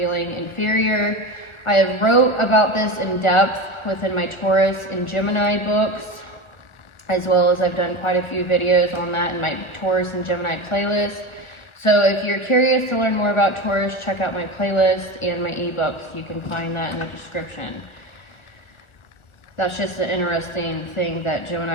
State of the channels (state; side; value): late; right; 1.4 ms